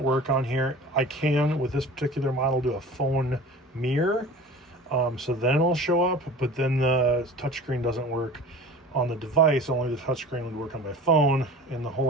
work on here. I can, with this particular model, do a phone mirror. So then it'll show up, but then the touchscreen doesn't work on the device. Only the touchscreen would work on my phone. And the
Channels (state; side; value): normal; both; correlation 0.39